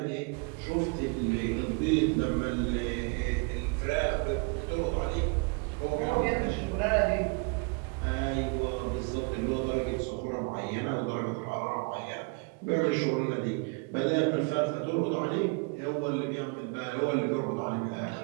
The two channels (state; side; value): quieter; left; 32.3 dB